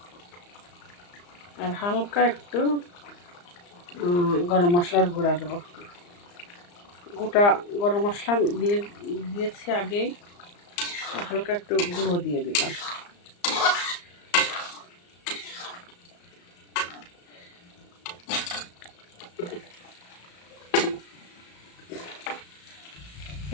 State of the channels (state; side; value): late; right; 34 ms